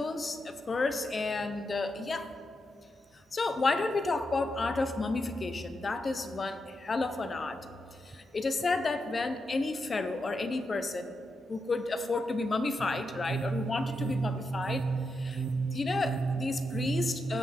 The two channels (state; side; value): normal; both; correlation 0.85